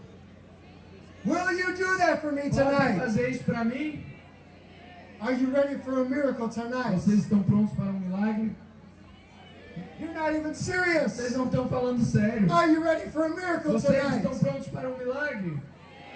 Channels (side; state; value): both; identical; correlation 1.00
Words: Will you do that for me Podem tonight? fazer isso para mim? Are you ready for a miracle tonight? Vocês estão prontos para um milagre? You're not even Vocês serious. não estão falando sério. Are you ready for a miracle Vocês estão tonight? prontos para um milagre?